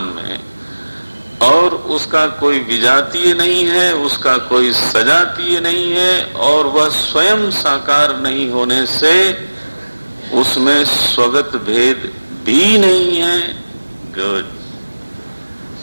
में, और उसका कोई विजातीय नहीं है, उसका कोई सजातीय नहीं है, और वह स्वयं साकार नहीं होने से उसमें स्वगत भेद भी नहीं है। गुड।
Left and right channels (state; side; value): inverted; both; correlation -1.00